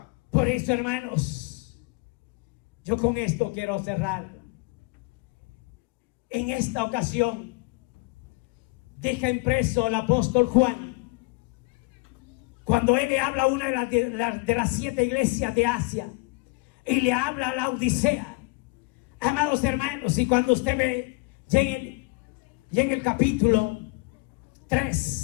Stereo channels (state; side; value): quieter; right; 27.7 dB